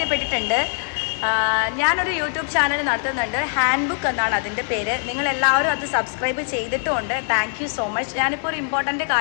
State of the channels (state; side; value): silent; right; 64 dB below the other